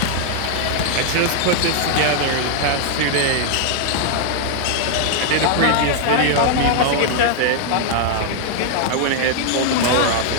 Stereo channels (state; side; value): different; both; correlation 0.00